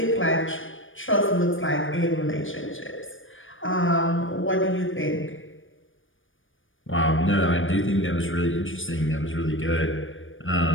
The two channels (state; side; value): late; right; 0.57 ms